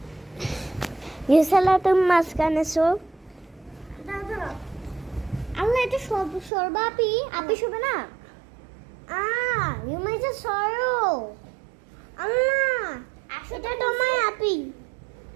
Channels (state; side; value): drops out; left; at 6.5 s